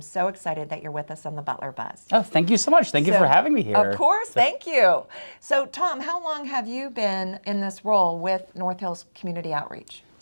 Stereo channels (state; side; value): inverted; both; correlation -1.00